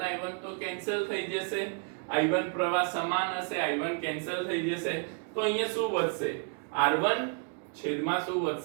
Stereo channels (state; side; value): quieter; left; 39.8 dB